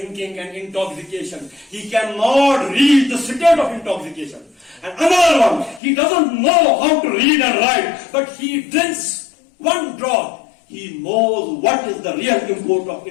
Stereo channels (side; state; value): right; drops out; at 5.8 s